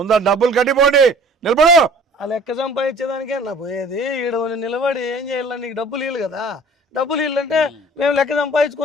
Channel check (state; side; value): normal; both; correlation 0.50